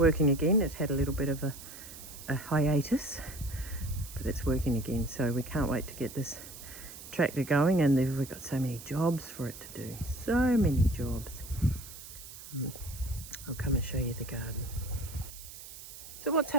again. It had a little bit of a hiatus, but it's working again. So we can't wait to get this tractor going, and we've got so many jobs for it to do. So many jobs. I'll come and show you the garden. So what's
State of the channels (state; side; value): noise; right; hiss, 14 dB below the sound